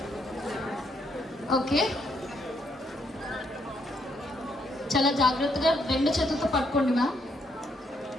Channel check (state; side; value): normal; both; correlation 0.74